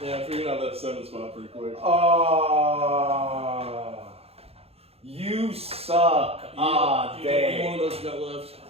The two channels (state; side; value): late; left; 0.29 ms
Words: Yeah, I figured out that 7 spot pretty quick. You suck. One of those you got left.